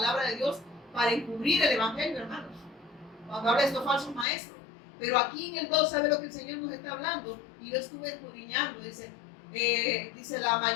de Dios para encubrir el Evangelio, hermanos. Cuando habla de estos falsos maestros. Pero aquí en el 2, ¿sabe lo que el Señor nos está hablando? Y yo estuve escudriñando, dice la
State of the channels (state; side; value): drops out; right; at 4.2 s